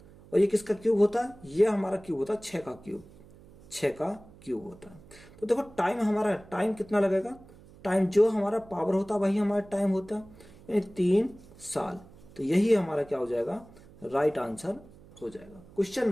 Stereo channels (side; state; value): right; noise; hum, 22 dB below the sound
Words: और ये किसका क्यूब होता है, ये हमारा क्यूब होता है 6 का क्यूब, 6 का क्यूब होता है। तो देखो टाइम हमारा, टाइम कितना लगेगा, टाइम जो हमारा पावर होता है वही हमारा टाइम होता है, यानी 3 साल। तो यही हमारा क्या हो जाएगा, राइट आंसर हो जाएगा। क्वेश्चन